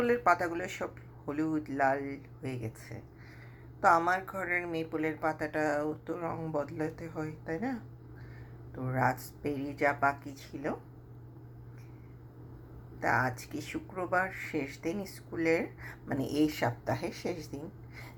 পাতাগুলো সব হলুদ লাল হয়ে গেছে। তো আমার ঘরের মেপলের পাতাটাও তো রং বদলাতে হয়, তাই না? তো রাস্পবেরি যা বাকি ছিল, তা আজকে শুক্রবার শেষ দিন স্কুলের, মানে এই সপ্তাহের শেষ দিন।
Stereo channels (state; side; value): identical; both; correlation 1.00